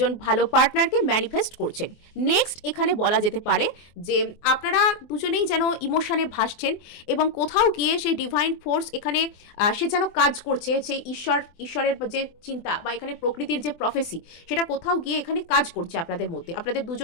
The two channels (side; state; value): right; late; 24 ms